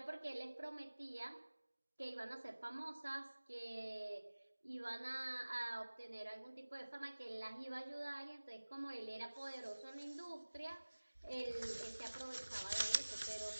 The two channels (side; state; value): both; inverted; correlation -1.00